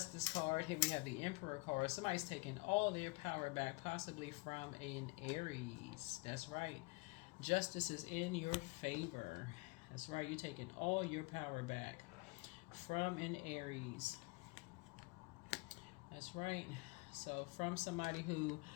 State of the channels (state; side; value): quieter; right; 26.6 dB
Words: card. Here we have the Emperor card. Somebody's taking all their power back, possibly from an Aries. That's right. Justice is in your favor. That's right, you're taking all your power back from an Aries. That's right. So from somebody who